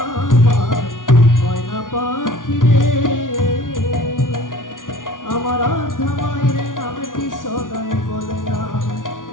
ময়না পাখি রে, আমার আধা মায়ের নামটি সদাই বলনা।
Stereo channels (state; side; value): late; right; 0.88 ms